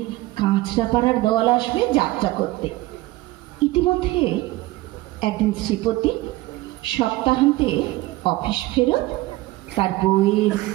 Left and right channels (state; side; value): quieter; left; 18.7 dB